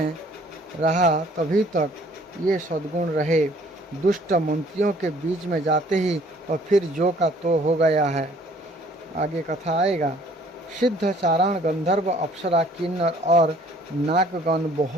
रहा तभी तक ये सद्गुण रहे। दुष्ट मंत्रियों के बीच में जाते ही और फिर जो का तो हो गया है। आगे कथा आएगा। सिद्ध, चारण, गंधर्व, अप्सरा, किन्नर और नागगण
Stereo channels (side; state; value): both; normal; correlation 0.57